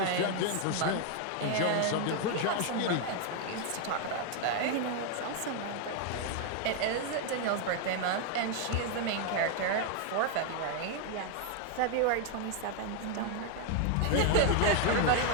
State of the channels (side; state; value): both; different; correlation 0.01